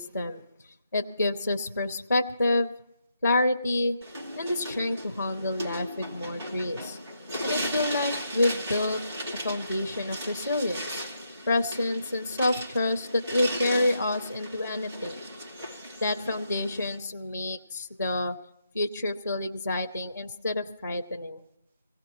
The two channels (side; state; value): both; inverted; correlation -0.80